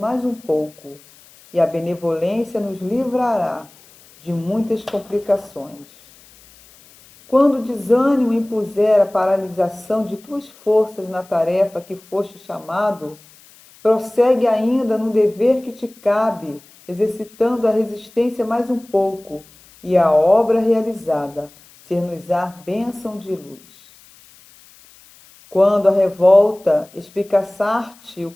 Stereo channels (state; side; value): noise; left; hiss, 26 dB below the sound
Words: um pouco, e a benevolência nos livrará de muitas complicações. Quando o desânimo impuser a paralisação de tuas forças na tarefa que foste chamado, prossegue ainda no dever que te cabe, exercitando a resistência mais um pouco, e a obra realizada ser-nos-á bênção de luz. Quando a revolta espicaçar-te o